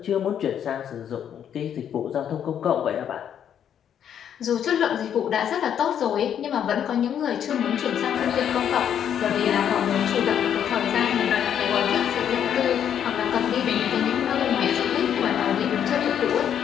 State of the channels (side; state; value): right; quieter; 9.1 dB